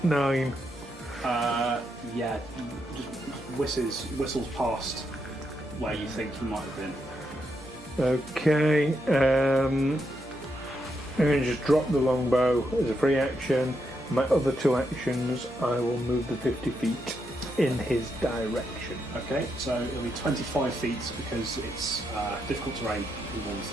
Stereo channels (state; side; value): normal; both; correlation 0.81